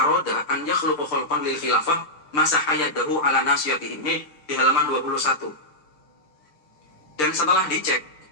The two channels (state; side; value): late; right; 6.7 ms